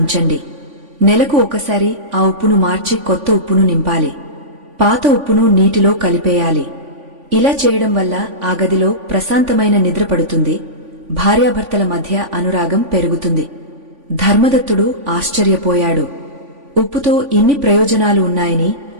నెలకు ఒకసారి ఆ ఉప్పును మార్చి కొత్త ఉప్పును నింపాలి. పాత ఉప్పును నీటిలో కలిపేయాలి. ఇలా చేయడం వల్ల ఆ గదిలో ప్రశాంతమైన నిద్ర పడుతుంది, భార్యాభర్తల మధ్య అనురాగం పెరుగుతుంది. ధర్మదత్తుడు ఆశ్చర్యపోయాడు. ఉప్పుతో ఇన్ని ప్రయోజనాలు ఉన్నాయని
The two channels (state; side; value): late; left; 3.5 ms